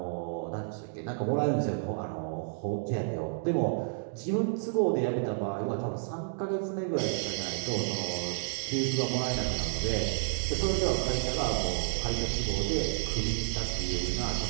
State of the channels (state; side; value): silent; left; digital silence